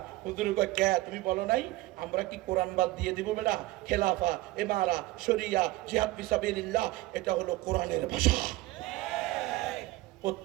হুজুর কয় কে তুমি বলো নাই? আমরা কি কোরআন বাদ দিয়ে দিব বেটা? খেলাফা, ইমারা, শরিয়া, জিহাদ ফি সাবিলিল্লাহ এটা হলো কোরআনের ভাষা।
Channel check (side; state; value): left; quieter; 18.8 dB